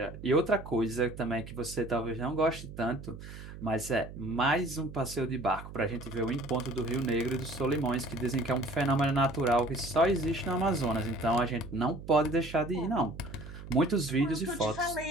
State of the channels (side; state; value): right; noise; hum, 13 dB below the sound